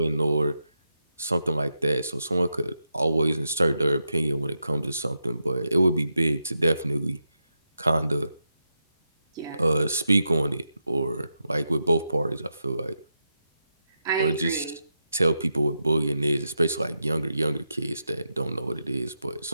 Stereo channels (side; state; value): both; inverted; correlation -0.86